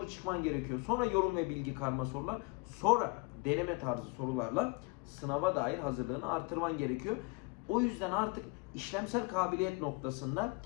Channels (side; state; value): right; quieter; 28.1 dB